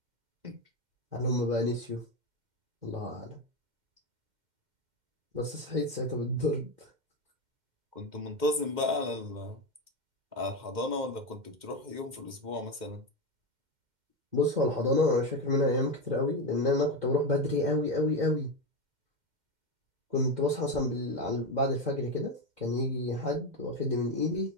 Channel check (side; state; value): left; late; 2.1 ms